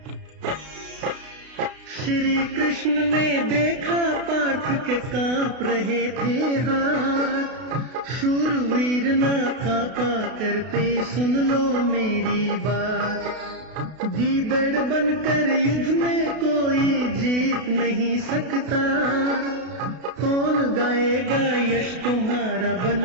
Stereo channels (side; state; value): left; late; 32 ms